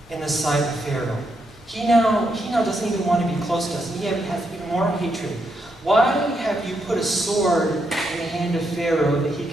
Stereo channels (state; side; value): normal; both; correlation 0.80